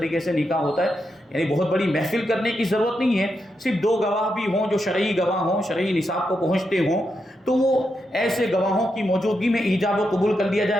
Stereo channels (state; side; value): normal; both; correlation 0.84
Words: سے نکاح ہوتا ہے، یعنی بہت بڑی محفل کرنے کی ضرورت نہیں ہے، صرف دو گواہ بھی ہوں جو شرعی گواہ ہوں، شرعی نصاب کو پہنچتے ہوں، تو وہ ایسے گواہوں کی موجودگی میں ایجاب و قبول کر لیا جائے،